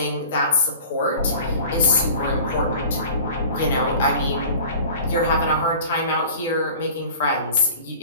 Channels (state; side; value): inverted; both; correlation -0.42